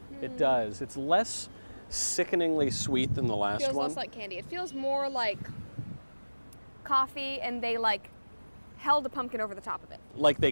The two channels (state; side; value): inverted; both; correlation -1.00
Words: it does. It's less sickeningly sweet than the last Feels one. less like candy. It feels more like coffee, and they like held a pumpkin over the top of it. Like they